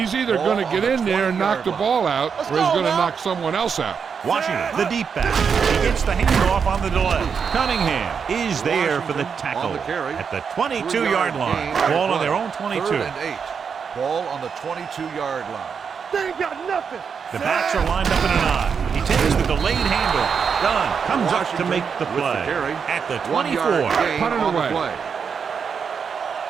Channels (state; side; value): quieter; left; 6.4 dB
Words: either going to get in there and knock the ball out, or he's going to knock someone else out. Washington, the deep back. He gets the handoff on the delay. Cunningham is there for the tackle at the 22-yard line. Ball on their own 22. 3rd and 8. Ball on the 22-yard line. They ain't got nothing. The backs are lined up in an I. He takes the delayed handoff. Dunn comes up to make the play at the 24. Put it away.